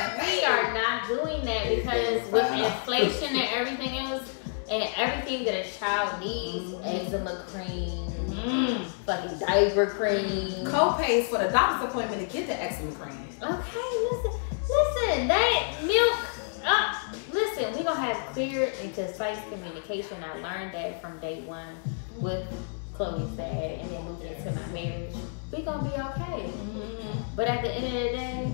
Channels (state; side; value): silent; right; 59 dB below the other